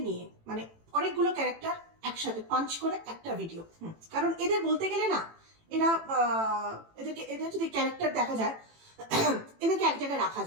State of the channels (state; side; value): late; left; 18 ms